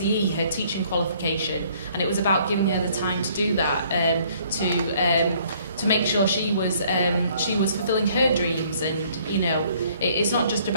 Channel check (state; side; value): inverted; both; correlation -0.61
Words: her teaching qualification, and it was about giving her the time to do that, to make sure she was fulfilling her dreams. And you know, it's not just